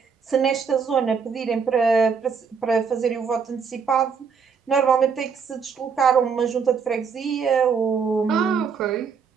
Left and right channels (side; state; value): left; quieter; 6.1 dB